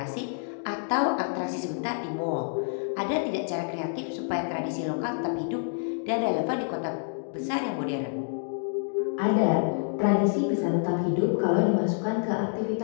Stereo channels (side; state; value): right; silent; digital silence